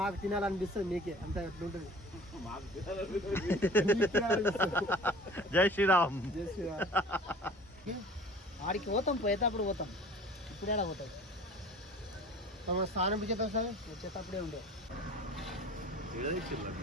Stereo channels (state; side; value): normal; both; correlation 0.44